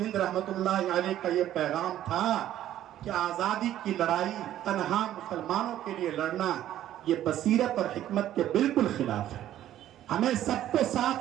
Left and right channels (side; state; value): left; quieter; 12.4 dB